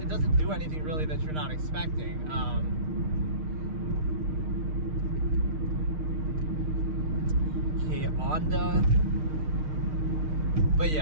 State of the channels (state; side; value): late; left; 6.5 ms